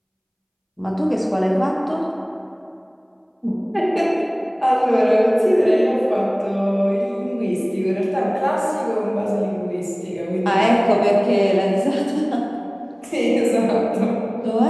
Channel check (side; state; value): both; identical; correlation 1.00